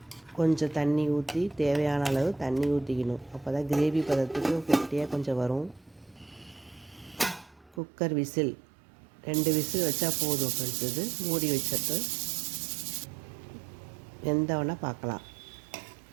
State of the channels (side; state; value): left; drops out; at 7.8 s